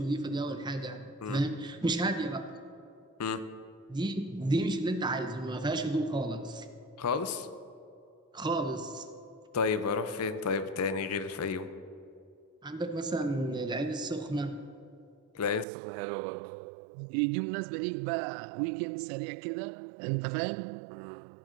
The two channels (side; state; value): left; drops out; at 15.7 s